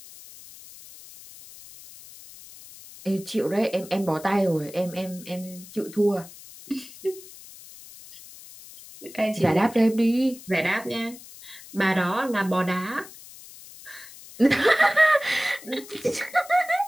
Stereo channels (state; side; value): noise; left; hiss, 18 dB below the sound